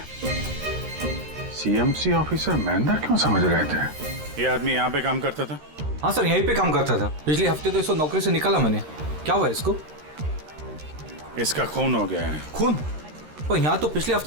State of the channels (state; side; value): late; left; 13 ms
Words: सीएमसी ऑफिसर महेंद्र क्यों समझ रहे थे? ये आदमी यहाँ पे काम करता था? हाँ सर, यहीं पे काम करता था। पिछले हफ्ते तो इसको नौकरी से निकाला मैंने। क्या हुआ इसको? इसका खून हो गया है। खून? पर यहाँ तो पिछले